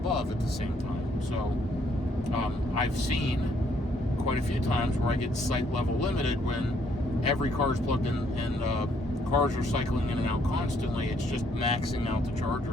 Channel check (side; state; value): both; normal; correlation 0.68